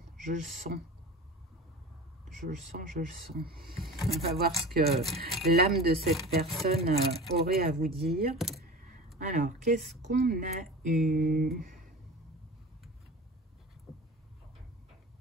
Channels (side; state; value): both; normal; correlation 0.35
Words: je le sens. Je le sens, je le sens. On va voir ce que l'âme de cette personne aurait à vous dire. Alors, qu'est-ce qu'on a eu?